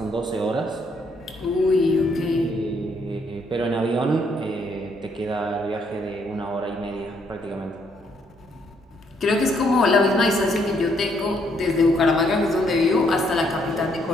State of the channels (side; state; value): both; normal; correlation 0.71